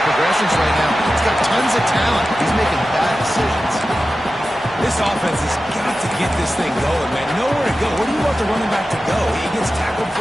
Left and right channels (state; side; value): normal; both; correlation 0.94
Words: progressions right now. He's got tons of talent. He's making bad decisions. This offense has got to get this thing going, man. Nowhere to go. Where do you want the running back to go? He gets tackled for